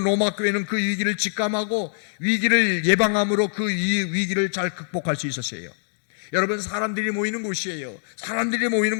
로마 교회는 그 위기를 직감하고 위기를 예방함으로 그 위기를 잘 극복할 수 있었어요. 여러분, 사람들이 모이는 곳이에요. 사람들이 모이는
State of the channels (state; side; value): silent; right; digital silence